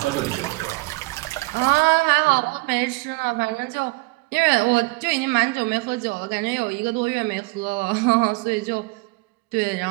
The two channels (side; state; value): left; quieter; 25.0 dB